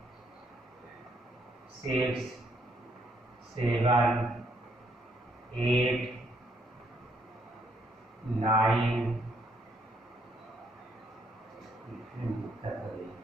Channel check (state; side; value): normal; both; correlation 0.71